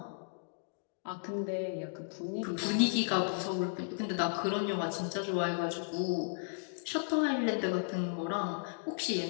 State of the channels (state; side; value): silent; right; digital silence